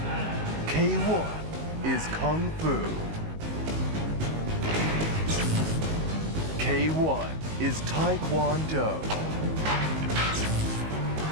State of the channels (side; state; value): left; late; 19 ms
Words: K1 is Kung Fu. K1 is Taekwondo.